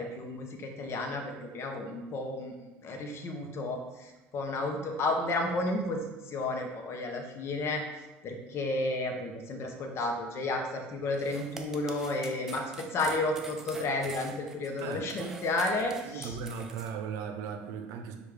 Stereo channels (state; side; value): normal; both; correlation 0.43